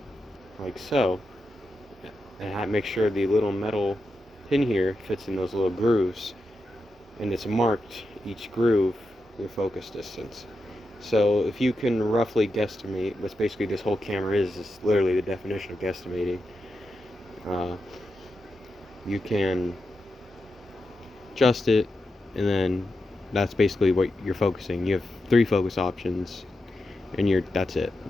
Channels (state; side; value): normal; both; correlation 0.88